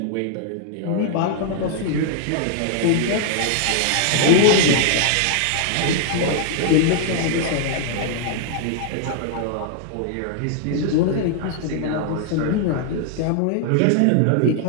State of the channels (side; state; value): both; different; correlation -0.01